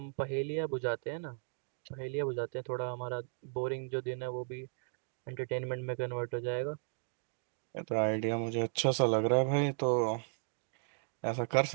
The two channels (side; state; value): left; silent; digital silence